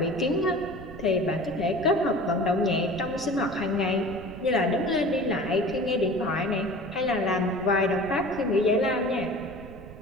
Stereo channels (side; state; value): right; noise; rumble, 15 dB below the sound